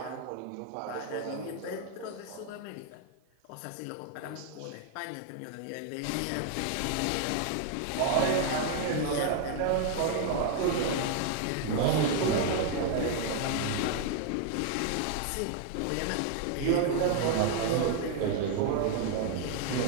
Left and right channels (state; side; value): different; both; correlation 0.00